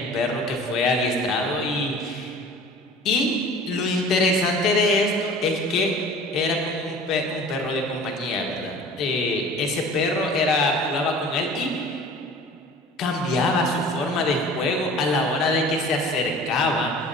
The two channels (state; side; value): normal; both; correlation 0.43